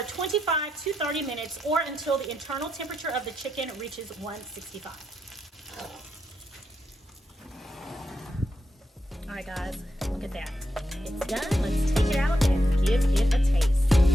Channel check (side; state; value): both; normal; correlation 0.84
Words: 25 to 30 minutes, or until the internal temperature of the chicken reaches 165. All right, guys, look at that. It's done. Let's take it out and give it a taste.